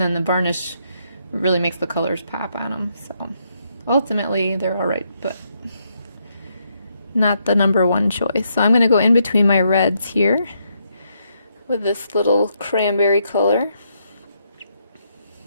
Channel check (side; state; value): both; inverted; correlation -0.77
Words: then the varnish really makes the colors pop on them. So ultimately, they're all right, but not the number one choice. So I'm going to go in between my reds here with this little cranberry color.